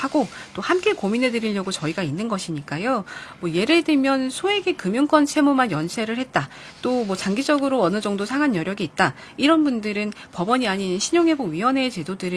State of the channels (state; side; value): identical; both; correlation 1.00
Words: 또 함께 고민해 드리려고 저희가 있는 것이니까요. 뭐 예를 들면 소액의 금융권 채무만 연체를 했다. 또 뭐 장기적으로 어느 정도 상한 여력이 있다. 이런 분들은 법원이 아닌 신용회복위원회